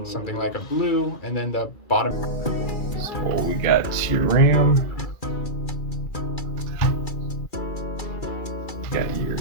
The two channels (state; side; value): late; right; 2.3 ms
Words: something like a blue, and then the bottom. So we got your RAM, got your